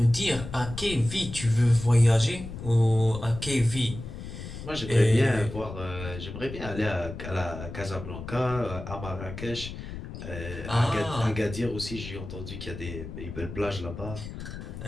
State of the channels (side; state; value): left; noise; rumble, 10 dB below the sound